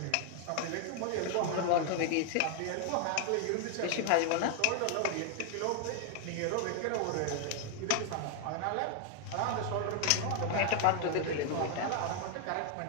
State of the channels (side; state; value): both; different; correlation 0.00